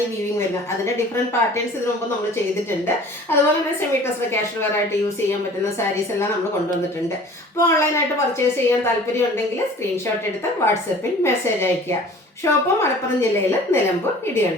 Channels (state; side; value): normal; both; correlation 0.47